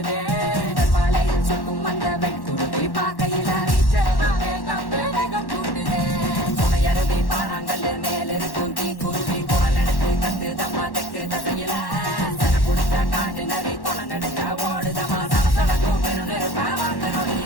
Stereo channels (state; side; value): late; right; 1.1 ms